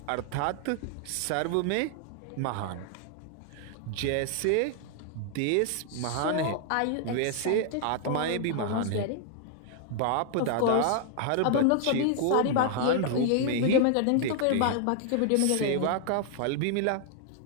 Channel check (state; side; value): different; both; correlation 0.00